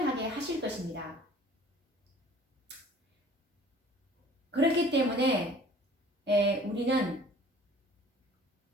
하실 것입니다. 그렇기 때문에 우리는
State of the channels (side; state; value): both; normal; correlation 0.50